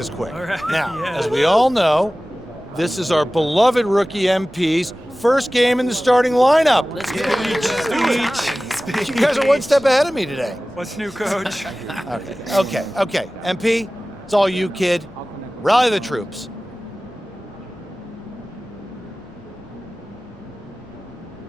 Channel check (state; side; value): normal; both; correlation 0.97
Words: quick. Now, as we all know, this is our beloved rookie MP's first game in the starting lineup. Let's go. Speech. You guys are one step ahead of me today. What's new, Coach? Okay. MP, it's all you, kid. Rally the troops.